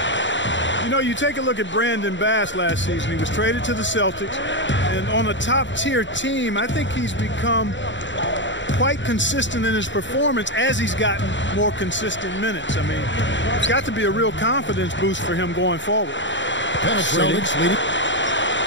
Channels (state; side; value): late; right; 0.54 ms